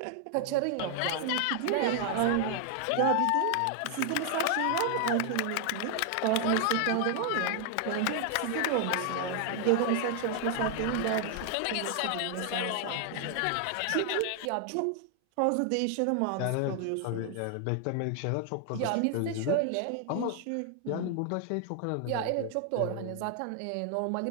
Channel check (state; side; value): different; both; correlation 0.00